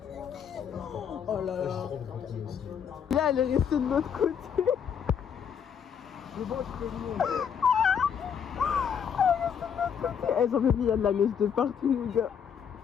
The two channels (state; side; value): quieter; right; 7.6 dB